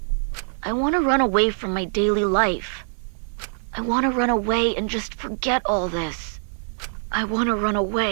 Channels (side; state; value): left; silent; digital silence